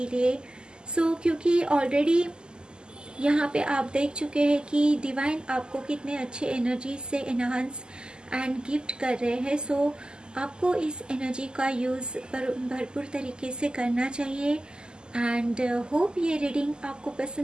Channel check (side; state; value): left; late; 0.046 ms